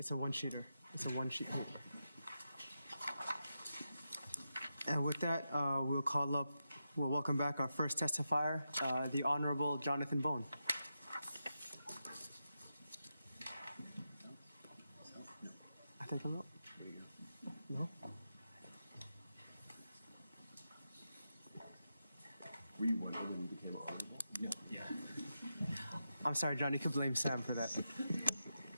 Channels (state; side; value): inverted; both; correlation -0.88